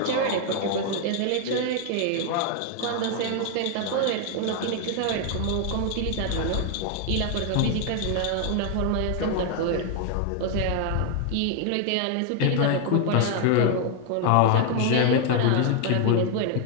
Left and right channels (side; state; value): both; different; correlation 0.00